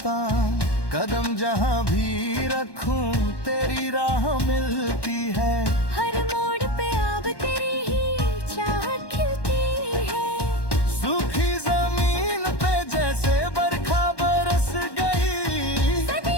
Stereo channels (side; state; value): right; late; 1.1 ms